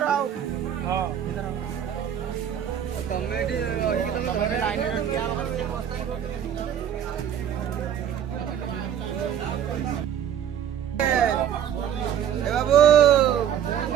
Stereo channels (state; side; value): quieter; left; 9.4 dB